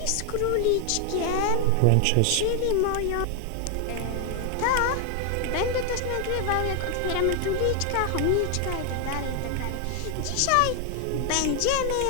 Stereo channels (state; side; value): different; both; correlation 0.00